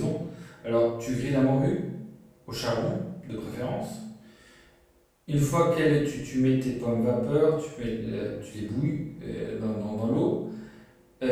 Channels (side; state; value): both; identical; correlation 1.00